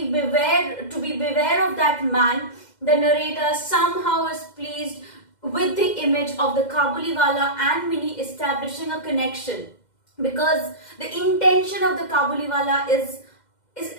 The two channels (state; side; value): late; right; 2.1 ms